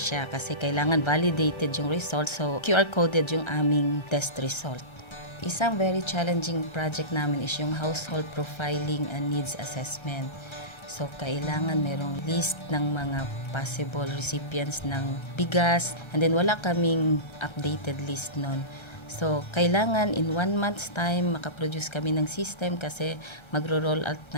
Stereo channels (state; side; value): late; right; 1.3 ms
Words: kasi kailangan validated yung result, so QR coded yung aming test result. Isang very challenging project namin is yung household profiling and needs assessment. So, kailangan merong list ng mga possible recipients ng bigas, and then wala kaming updated list nun. So, kailangan in 1 month's time makaproduce kami ng system kasi magro-roll out